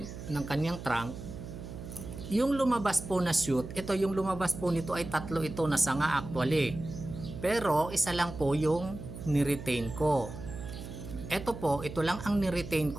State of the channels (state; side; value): noise; right; hum, 11 dB below the sound